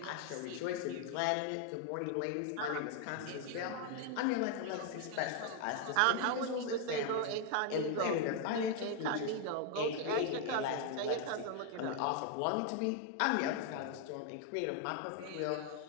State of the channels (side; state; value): both; different; correlation 0.00